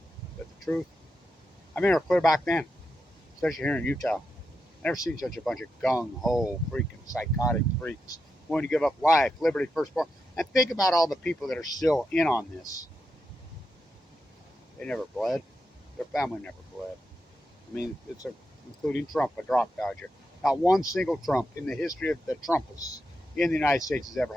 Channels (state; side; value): normal; both; correlation 0.87